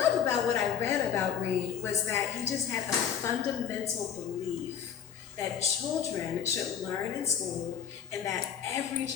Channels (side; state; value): right; quieter; 8.5 dB